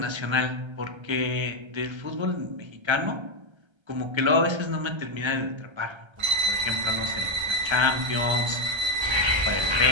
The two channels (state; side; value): late; left; 1.3 ms